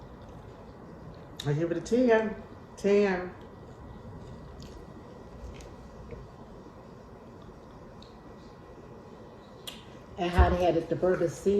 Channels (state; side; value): identical; both; correlation 1.00